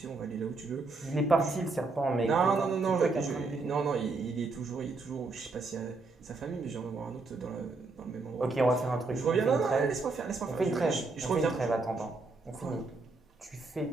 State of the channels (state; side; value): quieter; left; 3.7 dB